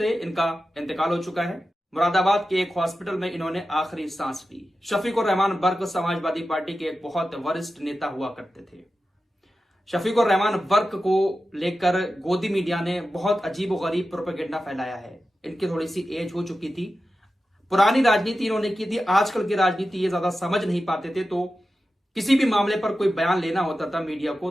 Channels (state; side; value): normal; both; correlation 0.92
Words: इनका इंतकाल हो चुका है। मुरादाबाद के एक हॉस्पिटल में इन्होंने आखिरी सांस ली। शफीकुर रहमान वर्क समाजवादी पार्टी के एक बहुत वरिष्ठ नेता हुआ करते थे। शफीकुर रहमान वर्क को लेकर गोदी मीडिया ने बहुत अजीब और गरीब प्रोपेगेंडा फैलाया है। इनकी थोड़ी सी एज हो चुकी थी, पुरानी राजनीति इन्होंने की थी। आजकल की राजनीति ये ज्यादा समझ नहीं पाते थे, तो किसी भी मामले पर कोई बयान लेना होता था मीडिया को